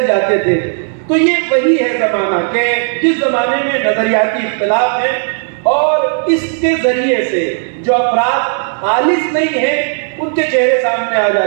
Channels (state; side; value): silent; left; 67 dB below the other